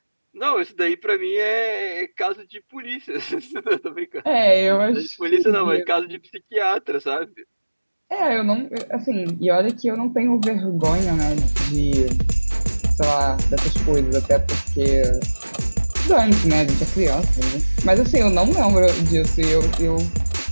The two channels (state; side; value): inverted; both; correlation -1.00